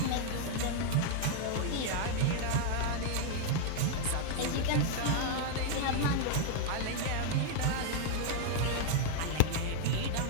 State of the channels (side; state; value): both; different; correlation 0.00